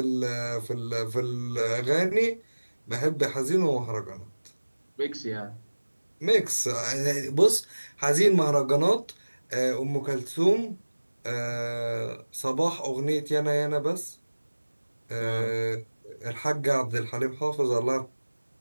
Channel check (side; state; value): both; inverted; correlation -1.00